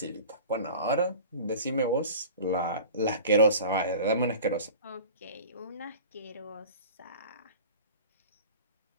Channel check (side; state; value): both; inverted; correlation -0.39